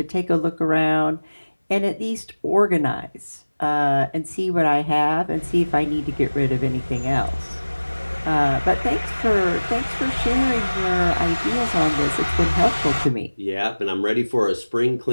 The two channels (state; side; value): inverted; both; correlation -1.00